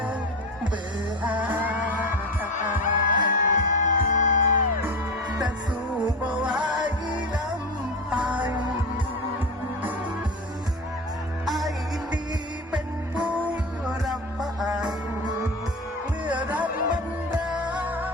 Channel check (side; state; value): both; normal; correlation 0.25